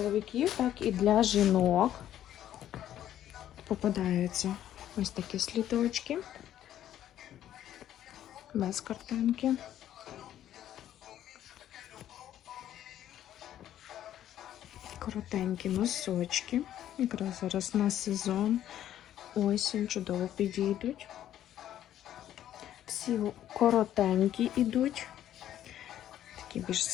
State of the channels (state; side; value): quieter; right; 11.6 dB